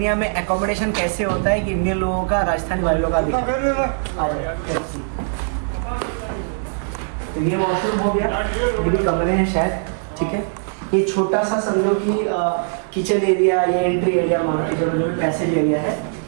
में एकोमोडेशन कैसे होता है कि इंडियन लोगों का राजस्थानी वालों का दिखा आ जाए। तो ये वॉशरूम हो गया, ये भी कमरे हैं शायद, ठीक है। ये छोटा सा समझो कि किचन एरिया या एंट्री एरिया मान के चलो, जो भी पैसेज एरिया है।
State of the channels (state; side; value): silent; left; digital silence